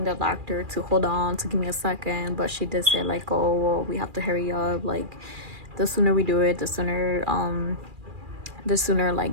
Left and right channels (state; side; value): late; left; 2.4 ms